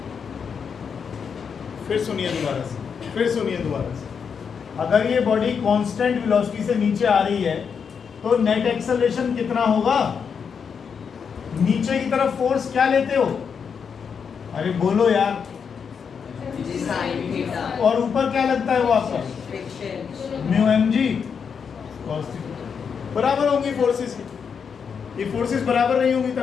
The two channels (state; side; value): quieter; right; 6.5 dB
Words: फिर सुनिए दोबारा से, अगर ये बॉडी कांस्टेंट वेलोसिटी से नीचे आ रही है तो नेट एक्सेलरेशन कितना होगा? नीचे की तरफ फोर्स क्या लेते हो? अरे बोलो यार। जी साइन थीटा और ऊपर क्या लगता है वो आपका? Friction mu m g cos theta. बराबर होंगी फोर्सेस की। ये फोर्सेस बराबर नहीं होंगी